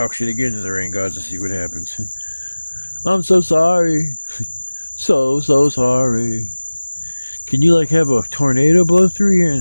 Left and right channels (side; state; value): both; inverted; correlation -1.00